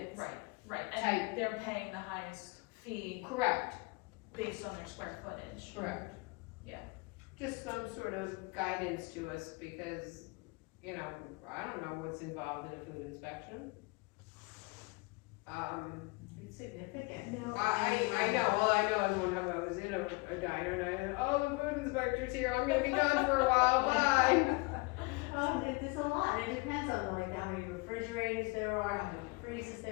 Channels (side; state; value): right; quieter; 27.7 dB